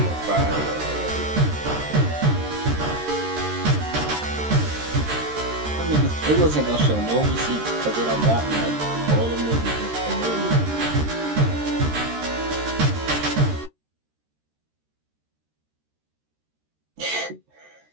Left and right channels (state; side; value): late; left; 13 ms